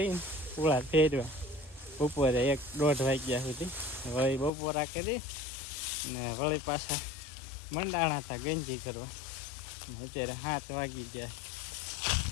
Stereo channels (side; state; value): right; drops out; at 4.5 s